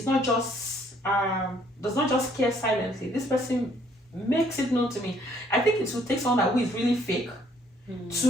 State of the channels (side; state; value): both; normal; correlation 0.64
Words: not just does not just care silently. This person makes it known to me. I think it will take someone who is really fake